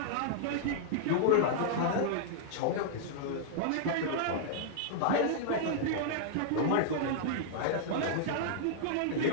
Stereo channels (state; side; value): different; both; correlation -0.01